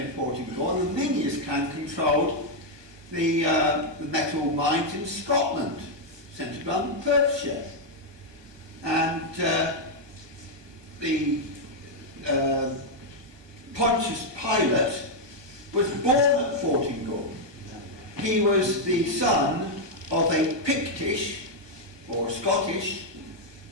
Fortingall, and the Miniers clan controlled the metal mines in Scotland, centred on Perthshire. And the Pontius Pilate was born at Fortingall. He was the son of a Pictish or Scottish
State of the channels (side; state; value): left; late; 1.2 ms